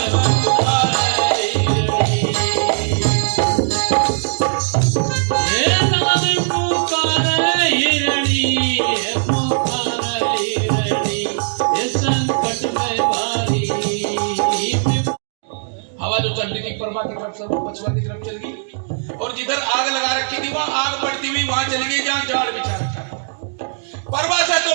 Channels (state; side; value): silent; left; digital silence